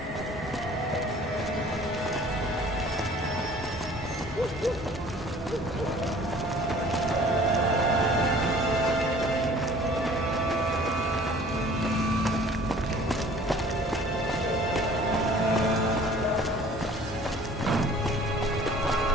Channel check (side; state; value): both; normal; correlation 0.50